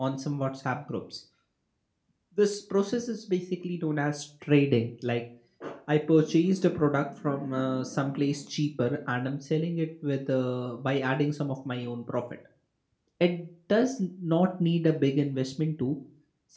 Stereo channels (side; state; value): both; identical; correlation 1.00